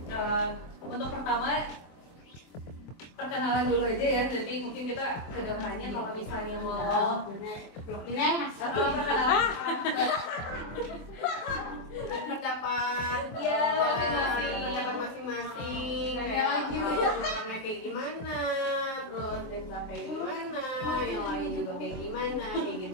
Untuk pertama perkenalan dulu aja ya, nanti mungkin kita kedepannya kalau misalnya mau atau perkenalan pendapat Iya, masing-masing. pendapat masing-masing orangnya kayak gimana, terus Desa kayak gimana, yang lain juga kayak gimana, kayak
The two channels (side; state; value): right; late; 23 ms